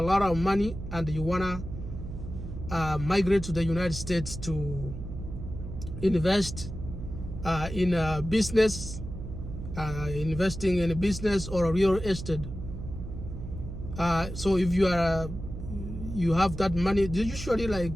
lot of money and you wanna migrate to the United States to invest in a business, investing in a business or a real estate. So if you have that money, usually like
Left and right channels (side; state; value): right; noise; hum, 9 dB below the sound